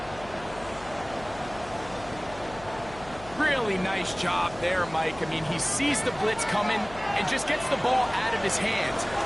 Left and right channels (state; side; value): noise; left; hum, 18 dB below the sound